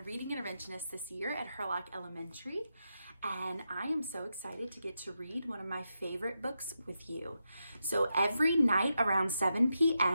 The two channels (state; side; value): inverted; both; correlation -0.87